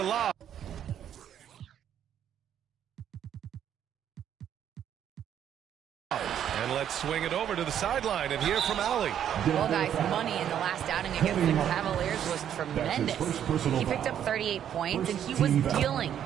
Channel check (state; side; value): quieter; left; 9.7 dB